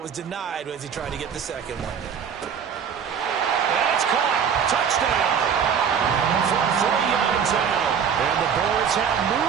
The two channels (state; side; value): quieter; left; 7.4 dB